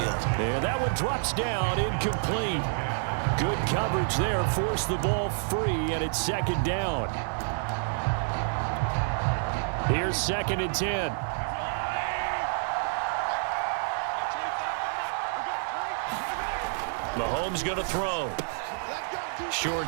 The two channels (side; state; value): left; silent; 59 dB below the other